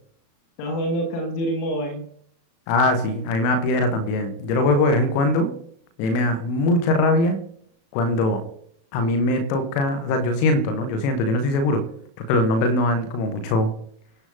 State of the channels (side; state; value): right; late; 36 ms